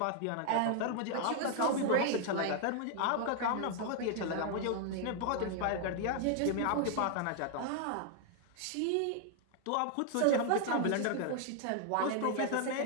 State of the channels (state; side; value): different; both; correlation 0.00